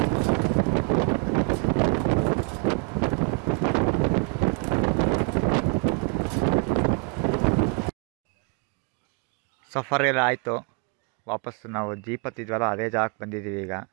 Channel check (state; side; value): quieter; left; 32.5 dB